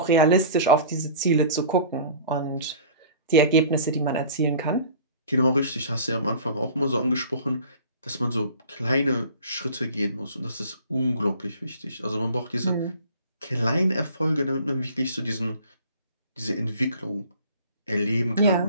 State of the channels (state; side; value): inverted; both; correlation -0.45